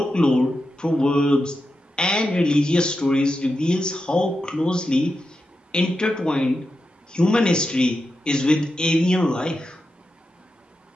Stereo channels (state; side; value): normal; both; correlation 0.89